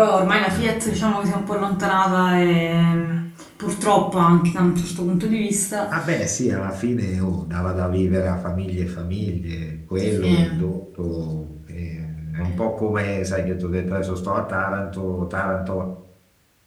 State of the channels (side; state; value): both; identical; correlation 1.00